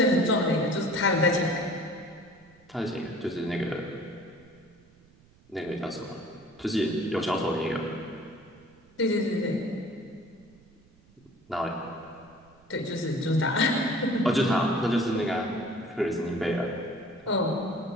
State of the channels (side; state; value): right; noise; rumble, 28 dB below the sound